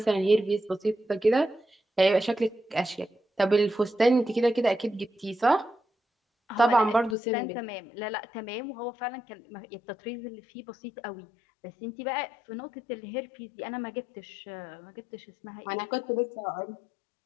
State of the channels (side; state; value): right; drops out; at 7.2 s